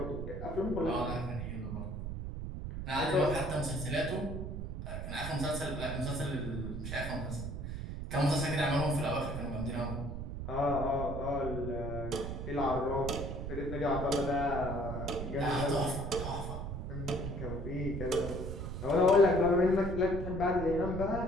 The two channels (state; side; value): noise; right; rumble, 5 dB below the sound